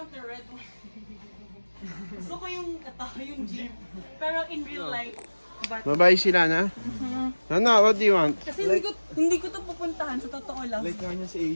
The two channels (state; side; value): inverted; both; correlation -1.00